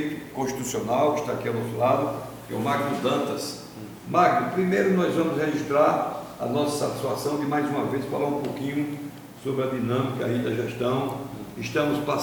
constitucional, que está aqui ao nosso lado, que é o Magno Dantas. Magno, primeiro nós vamos registrar a nossa satisfação de mais uma vez falar um pouquinho sobre a dinâmica aí da gestão. Estamos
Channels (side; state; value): both; identical; correlation 1.00